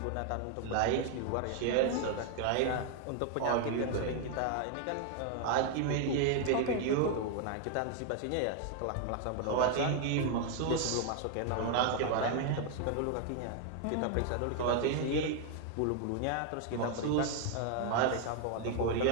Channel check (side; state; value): both; different; correlation 0.00